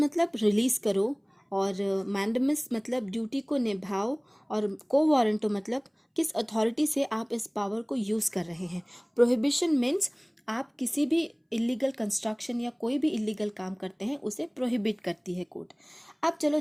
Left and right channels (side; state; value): both; identical; correlation 1.00